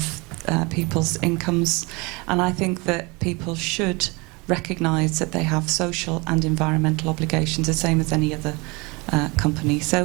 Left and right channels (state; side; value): quieter; left; 26.9 dB